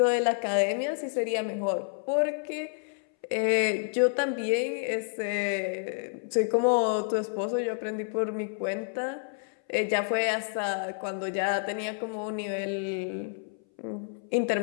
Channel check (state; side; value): silent; right; 58 dB below the other